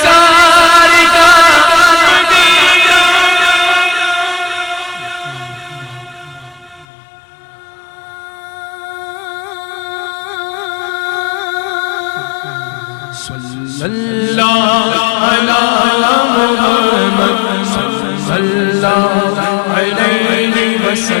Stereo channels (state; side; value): drops out; right; at 6.9 s